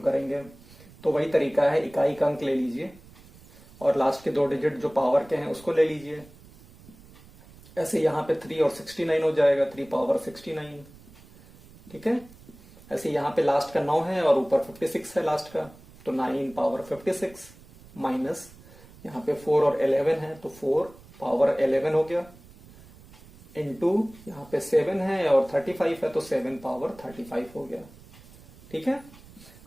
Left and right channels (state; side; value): noise; right; rumble, 23 dB below the sound